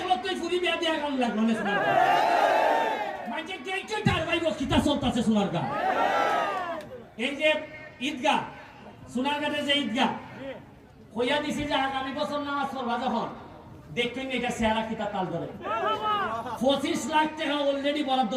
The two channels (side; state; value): both; identical; correlation 1.00